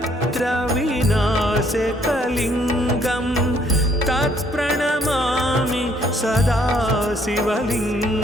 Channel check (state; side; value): normal; both; correlation 0.65